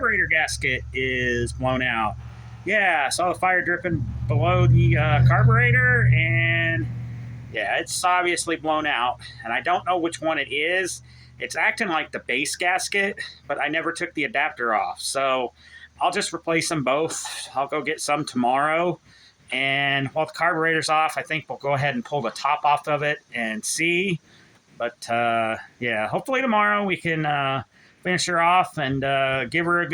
gasket is blown out. Yeah, I saw the fire dripping below the carburetor, and yeah, it's obviously blown out. And I don't know which one it is. It's acting like the base gasket, but I never took the adapter off. So I'll just replace them both. I'll go get some tomorrow. And while the carburetor's off, I think we'll go ahead and pull the top off of it and see. But yeah, hopefully tomorrow we can finish her off and give her a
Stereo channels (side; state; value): both; identical; correlation 1.00